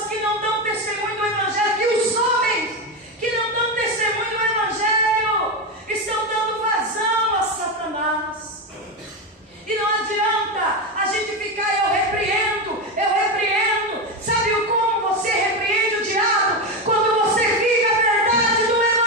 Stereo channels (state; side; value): normal; both; correlation 0.13